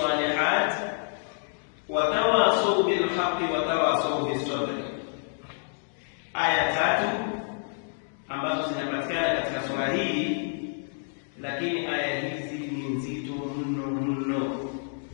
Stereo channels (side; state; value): right; silent; digital silence